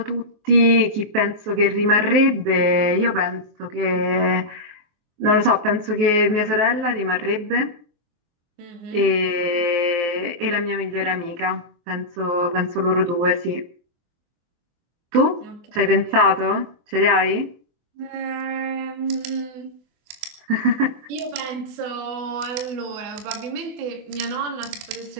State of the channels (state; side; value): late; left; 23 ms